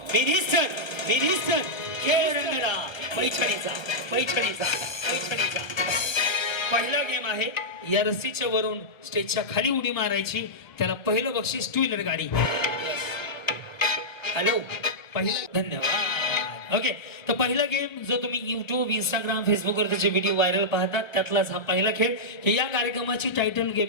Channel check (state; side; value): late; right; 1.1 ms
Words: मिनिस्टर मिनिस्टर खेळ रंगला पैठणीचा पैठणीचा पैठणीचा. पहिला गेम आहे, या रस्सीच्या वरून स्टेजच्या खाली उडी मारायची. त्याला पहिलं बक्षीस 2 व्हीलर गाडी. हॅलो, पहिला. धन्यवाद. ओके, तर पहिला गेम जो तुम्ही युट्यूब, इंस्टाग्राम, फेसबुकवर त्याचे व्हिडिओ व्हायरल पाहतात त्यातलाच हा पहिला खेळ. की या कार्यक्रमाची टायटल